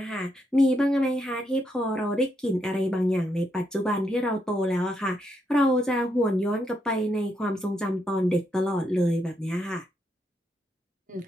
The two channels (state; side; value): normal; both; correlation 0.79